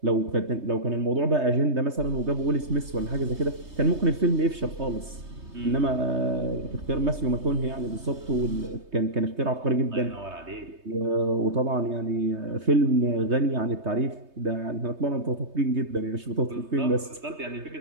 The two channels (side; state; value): left; late; 3.3 ms